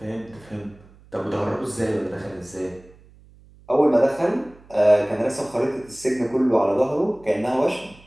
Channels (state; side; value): noise; right; hum, 25 dB below the sound